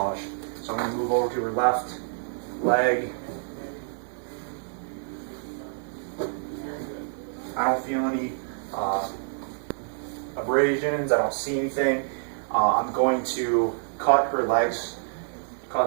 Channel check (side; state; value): left; silent; digital silence